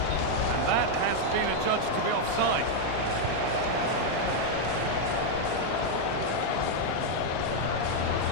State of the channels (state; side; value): different; both; correlation 0.00